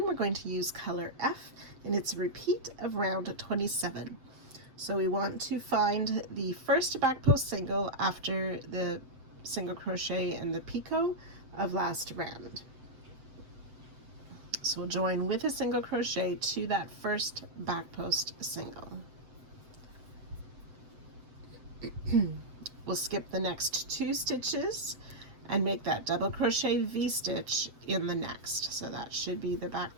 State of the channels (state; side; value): late; left; 7.8 ms